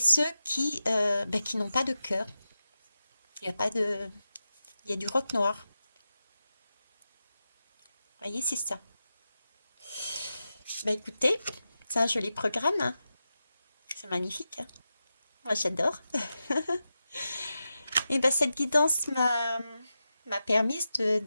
qui n'ont pas de cœur. Il y a du roc noir. Vous voyez, c'est ça. Écoutez, c'est un joli programme, hein. C'est magnifique, hein. Moi, j'adore. Et cette guidance m'a permis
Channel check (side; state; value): both; inverted; correlation -0.91